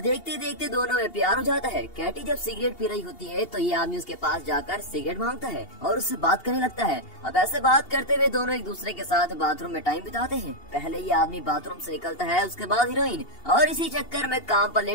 देखते दोनों में प्यार हो जाता है। कैटी जब सिगरेट पी रही होती है तो ये आदमी उसके पास जाकर सिगरेट मांगता है और उससे बात करने लगता है। अब ऐसे बात करते हुए दोनों एक दूसरे के साथ बाथरूम में टाइम बिताते हैं। पहले ये आदमी बाथरूम से निकलता है, उसके बाद हीरोइन, और इसी चक्कर में काम पर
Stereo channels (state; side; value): late; right; 2.8 ms